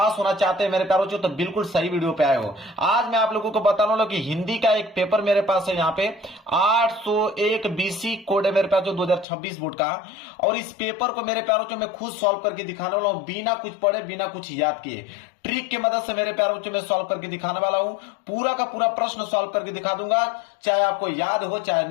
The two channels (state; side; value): drops out; right; at 9.2 s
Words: होना चाहते हैं मेरे प्यारों चो, तो बिल्कुल सही वीडियो पे आए हो। आज मैं आप लोगों को बताने वाला हूं कि हिंदी का एक पेपर मेरे पास है यहाँ पे 801 बीसी कोड है मेरे पास जो 2026 बोर्ड का। और इस पेपर को मेरे प्यारों चो मैं खुद सॉल्व करके दिखाने वाला हूं, बिना कुछ पढ़े बिना कुछ याद किए। ट्रिक की मदद से मेरे प्यारों बच्चों में सॉल्व करके दिखाने वाला हूं। पूरा का पूरा प्रश्न सॉल्व करके दिखा दूंगा, चाहे आपको याद हो चाहे